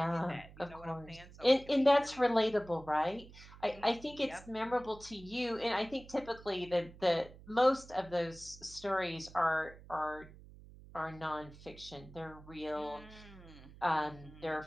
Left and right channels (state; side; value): noise; right; hum, 19 dB below the sound